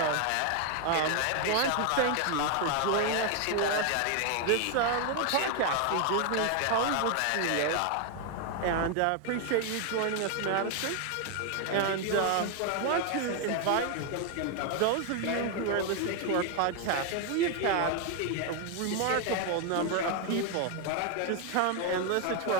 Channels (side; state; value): both; different; correlation 0.01